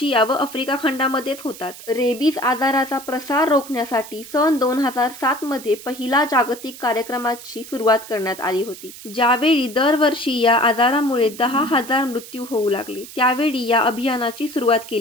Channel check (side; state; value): right; noise; hiss, 15 dB below the sound